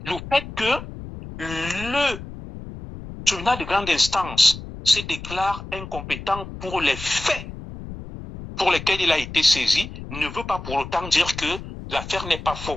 Le fait que le tribunal de grande instance se déclare incompétent pour les faits pour lesquels il a été saisi ne veut pas pour autant dire que l'affaire n'est pas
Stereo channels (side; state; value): left; noise; rumble, 12 dB below the sound